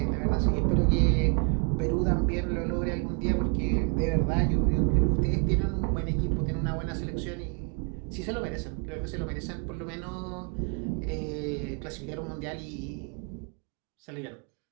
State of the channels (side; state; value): left; quieter; 36.0 dB